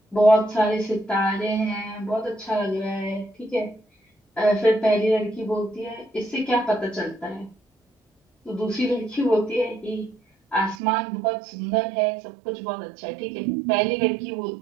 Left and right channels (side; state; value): left; drops out; at 10.8 s